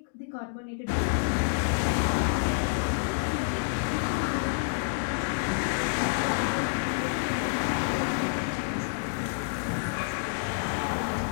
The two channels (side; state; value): right; silent; digital silence